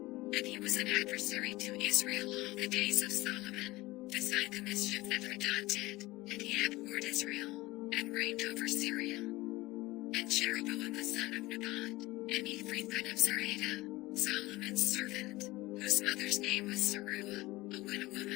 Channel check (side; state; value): right; quieter; 19.8 dB